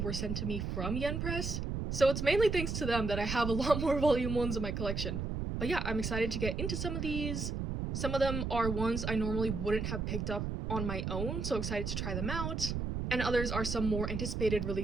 sent to me from Yen Press, so it's mainly thanks to them that I have a lot more volume 1s in my collection. But yeah, I'm excited to get into some of these. Some of them are ones I normally wouldn't have picked up on my own, so excited to try them out. And others are some more anticipated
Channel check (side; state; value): right; noise; rumble, 3 dB below the sound